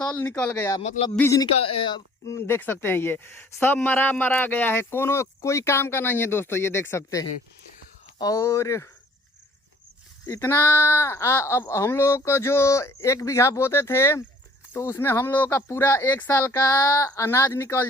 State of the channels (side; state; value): both; normal; correlation 0.55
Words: निकल गया, मतलब बीज निकल, देख सकते हैं ये सब मरा गया है। कोई काम का नहीं है दोस्तों, ये देख सकते हैं। और इतना अब हम लोग को जो 1 बीघा बोते थे तो उसमें हम लोगों का पूरा 1 साल का अनाज निकल